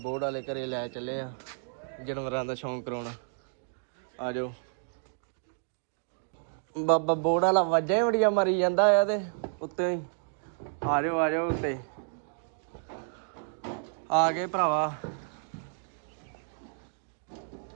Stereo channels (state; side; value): silent; left; digital silence